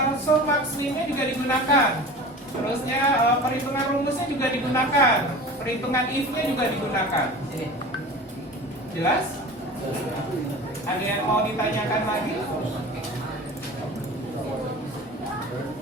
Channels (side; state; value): both; normal; correlation 0.37